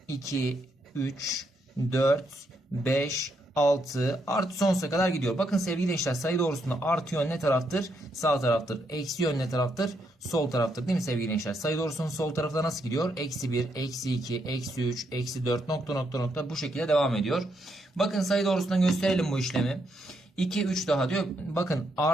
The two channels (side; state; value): both; normal; correlation 0.78